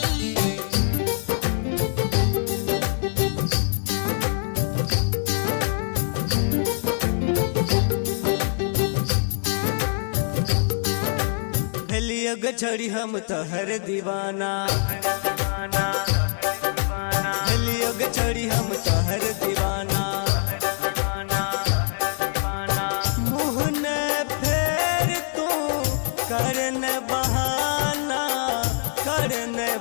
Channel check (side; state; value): right; silent; 63 dB below the other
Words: योग छड़ी हम तोहर दीवाना, योग छड़ी हम तोहर दीवाना। मुँह न फेर तू करन बहाना, करन